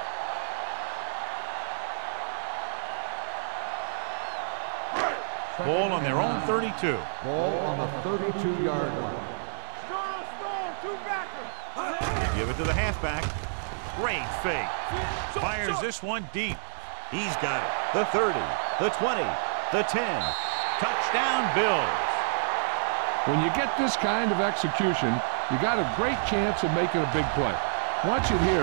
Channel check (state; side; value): silent; left; digital silence